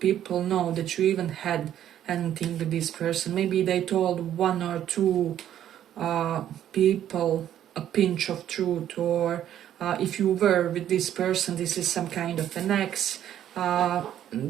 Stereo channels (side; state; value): left; quieter; 11.0 dB